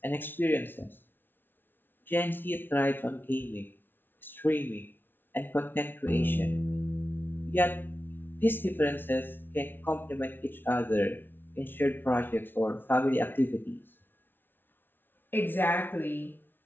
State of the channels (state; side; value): late; right; 0.098 ms